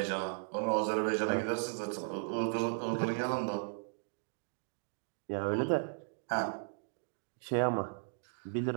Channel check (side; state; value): left; silent; digital silence